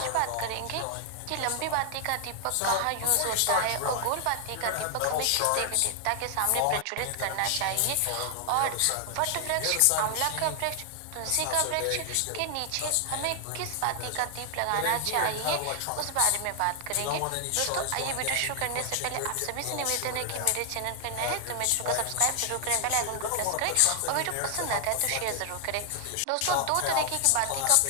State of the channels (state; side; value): different; both; correlation 0.00